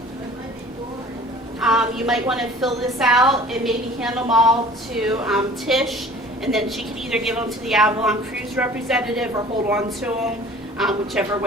You might want to fill this out and maybe hand them all to Tish, and then she can either give them to the Avalon cruise representative or hold on to them, whichever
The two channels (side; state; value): both; normal; correlation 0.47